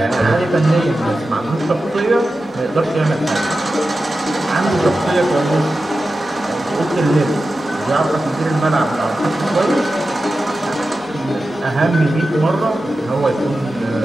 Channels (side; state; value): both; normal; correlation 0.93